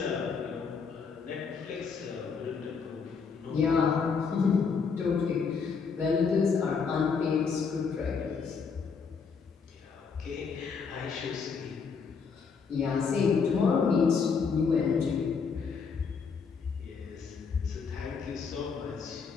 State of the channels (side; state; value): right; quieter; 5.6 dB